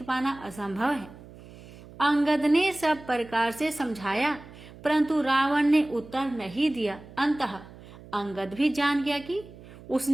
पाना असंभव है। अंगद ने सब प्रकार से समझाया, परंतु रावण ने उत्तर नहीं दिया। अंततः अंगद भी जान गया कि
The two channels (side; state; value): right; noise; hum, 19 dB below the sound